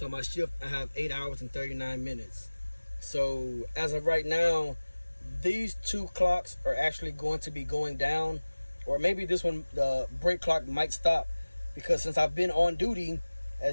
on my shift, I have 8 hours and 39 minutes. So as of right now, these two clocks are actually going to be going down, or maybe this one, the break clock might stop, because since I've been on duty,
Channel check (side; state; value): both; inverted; correlation -1.00